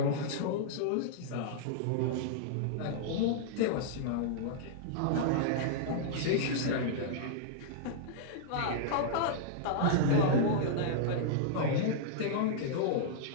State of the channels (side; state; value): both; different; correlation -0.02